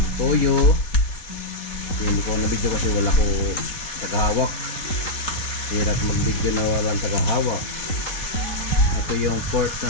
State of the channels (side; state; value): right; late; 3.9 ms